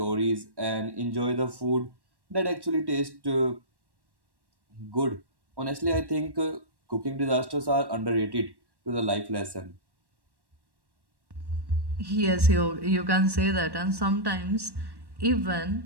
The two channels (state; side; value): late; left; 1.1 ms